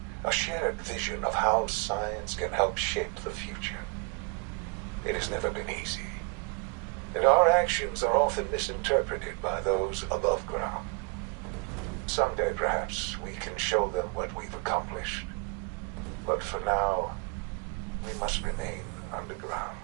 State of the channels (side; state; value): left; quieter; 33.4 dB